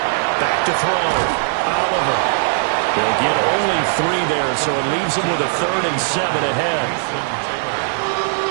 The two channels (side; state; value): left; silent; digital silence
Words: Back to throw. Oliver. He'll get only 3 there, so it leaves him with a 3rd and 7 ahead.